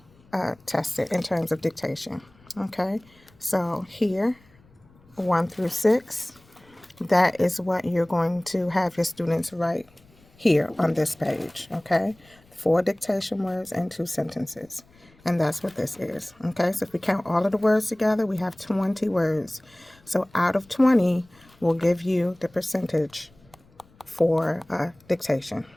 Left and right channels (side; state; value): left; noise; rumble, 29 dB below the sound